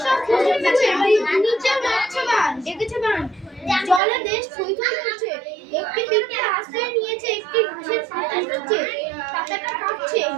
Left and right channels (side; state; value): left; drops out; at 4.0 s